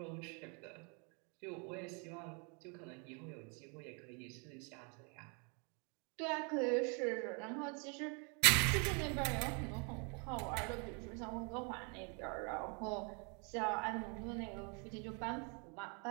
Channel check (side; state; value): left; quieter; 35.6 dB